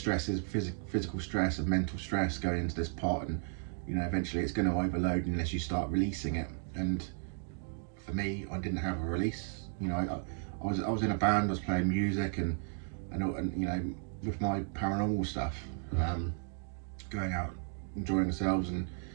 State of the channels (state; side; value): silent; left; 55 dB below the other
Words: is physical stress and mental stress going into this pot, and eventually it's going to overload unless you start releasing it. And for me, I didn't have a release. I was in a band, I was playing music, and with my paranormal stuff, going out, enjoying ourselves, and